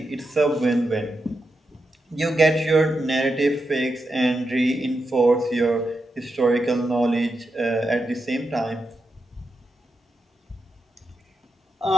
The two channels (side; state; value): both; normal; correlation 0.87